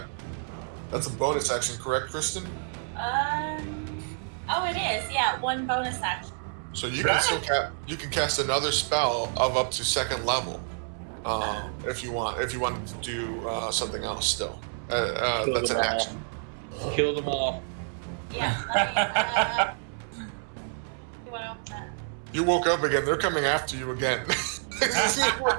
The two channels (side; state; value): left; silent; 59 dB below the other